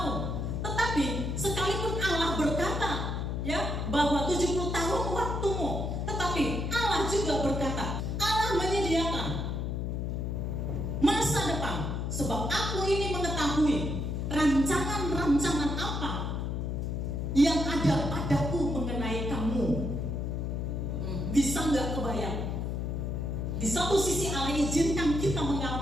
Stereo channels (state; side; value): noise; left; hum, 2 dB below the sound